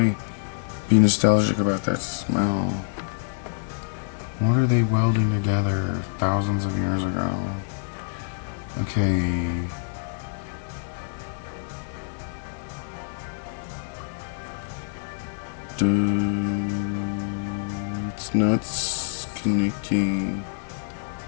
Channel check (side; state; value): right; silent; 61 dB below the other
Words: be nostalgic about that smell? What are they welding together thousands of years ago? Okay. It's not connecting.